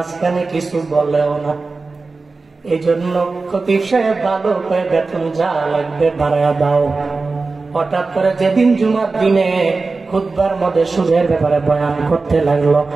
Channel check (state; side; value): quieter; left; 3.9 dB